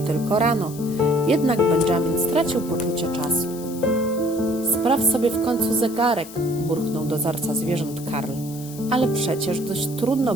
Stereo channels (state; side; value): noise; left; hiss, 16 dB below the sound